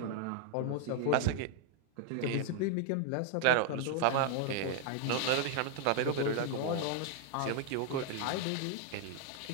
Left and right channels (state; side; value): different; both; correlation 0.00